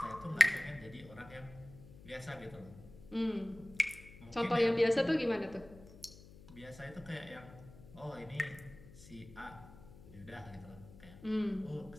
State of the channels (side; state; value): left; noise; hum, 19 dB below the sound